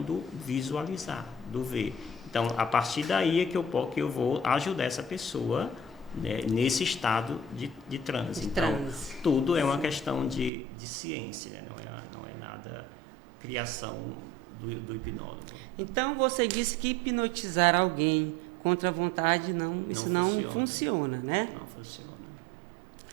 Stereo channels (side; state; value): left; drops out; at 10.5 s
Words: do visualizar, do ver. Então, a partir daí é que eu vou ajudar essa pessoa, né, nesse estado de transe. Então, tudo é uma questão de ciência, né? Não é nada criação do hipnólogo. Então, você disse que hipnotizar alguém contra a vontade não funciona, né? Não funciona.